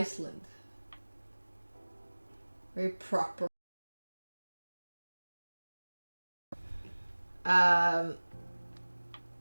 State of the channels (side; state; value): both; inverted; correlation -1.00